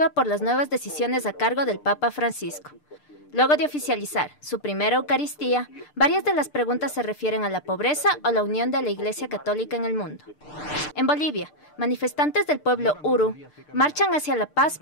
por las nuevas decisiones a cargo del Papa Francisco. Luego de oficializar su primera Eucaristía, varias de las preguntas se refieren a la pobreza o la unión de la Iglesia Católica en el mundo. En Bolivia, manifestantes del pueblo Uru marchan hacia la paz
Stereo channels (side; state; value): right; late; 6.7 ms